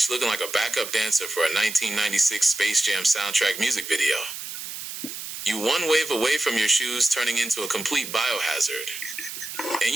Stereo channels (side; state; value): right; noise; hiss, 8 dB below the sound